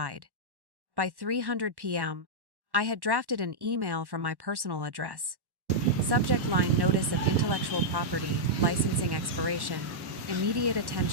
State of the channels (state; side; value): late; left; 1.1 ms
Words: By 3:00 p.m., I had drafted an email from my personal address. Subject line: notice of intellectual property, licensing expiration, immediate